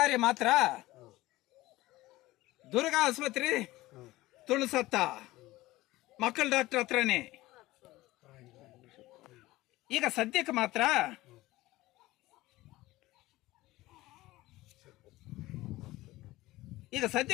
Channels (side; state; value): right; quieter; 18.1 dB